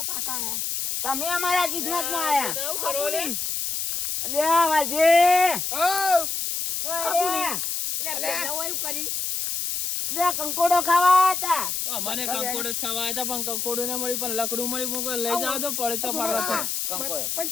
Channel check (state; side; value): noise; left; hiss, 2 dB below the sound